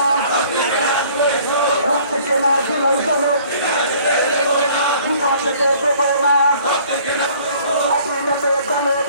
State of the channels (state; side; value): inverted; both; correlation -0.55